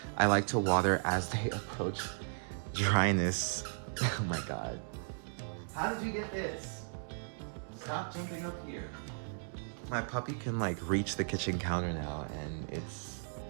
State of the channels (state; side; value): silent; left; digital silence